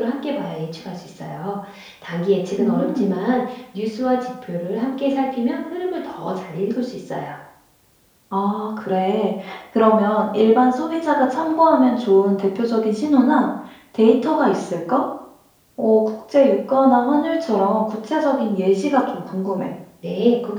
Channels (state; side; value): identical; both; correlation 1.00